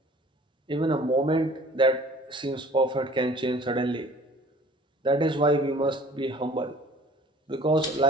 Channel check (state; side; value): normal; both; correlation 0.50